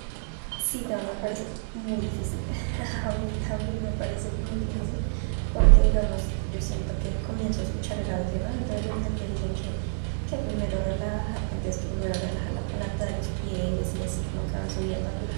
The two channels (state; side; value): silent; left; digital silence